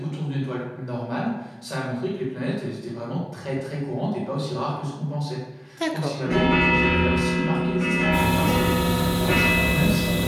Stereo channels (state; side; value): identical; both; correlation 1.00